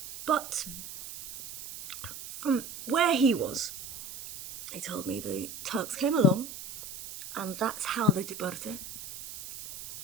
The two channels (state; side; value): noise; right; hiss, 11 dB below the sound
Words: But from where he was, he told me the Turks came along, and that's how the Diberte